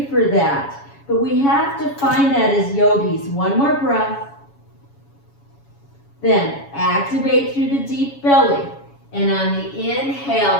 for that, but we have to find that as yogis. One more breath. Then activate through the deep belly. And on the inhale,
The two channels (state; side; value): late; right; 7.2 ms